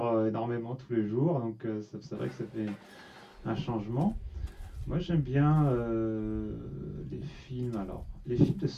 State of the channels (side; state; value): both; identical; correlation 1.00